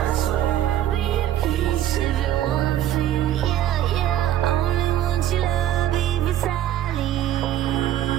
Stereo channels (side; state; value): left; quieter; 12.1 dB